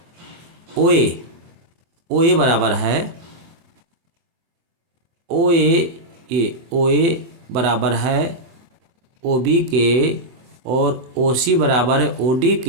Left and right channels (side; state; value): left; late; 24 ms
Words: OA बराबर है, OA बराबर है OB के, और OC बराबर है OD